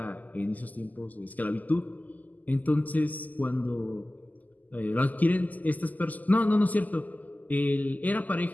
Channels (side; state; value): right; late; 0.080 ms